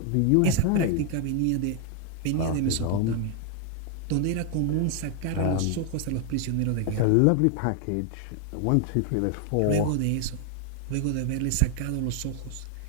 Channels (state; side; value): different; both; correlation 0.00